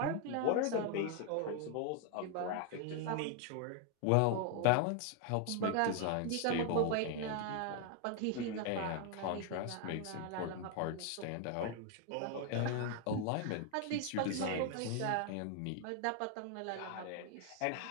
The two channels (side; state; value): both; different; correlation 0.00